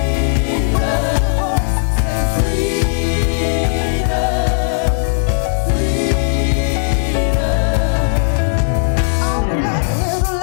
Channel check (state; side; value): silent; right; digital silence